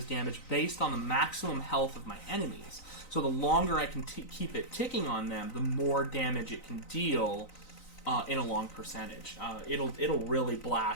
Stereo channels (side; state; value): right; late; 3.9 ms